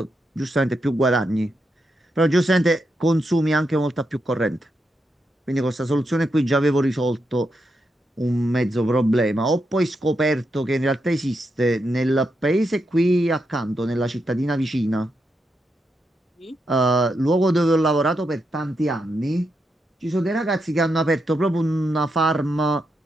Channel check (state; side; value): normal; both; correlation 0.84